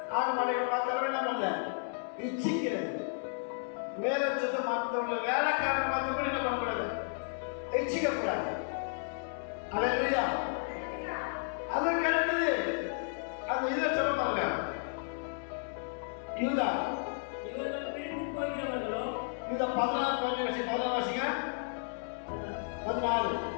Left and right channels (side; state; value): right; silent; digital silence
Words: ஆடு மாடுகளை பார்த்தாலுமே என்ன பண்ணல? இச்சிக்கிறது. வேதச்சத்தை மற்றவங்க வேலைக்காரன் பார்த்து கூட என்ன பண்ணக்கூடாது? இச்சிக்கக்கூடாது. அல்லேலூயா. அதற்கு அடுத்தது அந்த இதை சொல்ல பாருங்க, யூதா. இவர்கள் பிரிந்து போகிறவர்களோ, யூதா 16 வாசிங்க. 16.